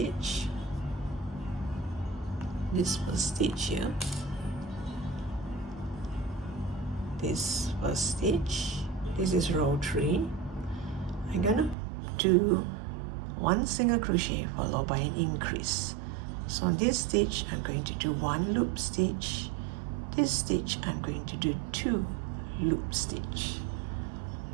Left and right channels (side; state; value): left; drops out; at 11.8 s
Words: This first stitch here, this first stitch, this is row 3. I'm gonna do 1 single crochet followed by an increase. So on this stitch I'm going to do 1 loop stitch. This stitch I'm going to do 2 loop stitch.